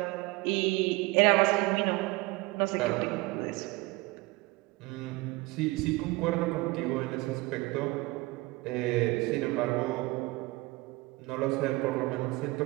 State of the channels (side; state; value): left; quieter; 22.3 dB